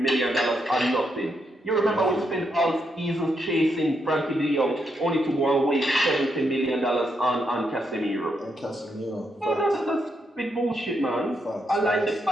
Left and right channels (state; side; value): normal; both; correlation 0.80